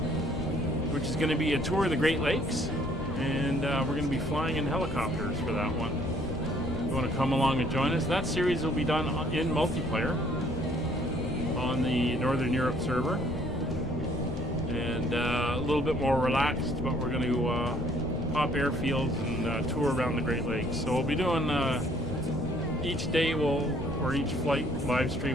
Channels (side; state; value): left; noise; rumble, 11 dB below the sound